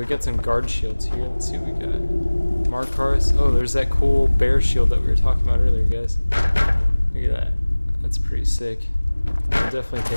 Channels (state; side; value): inverted; both; correlation -1.00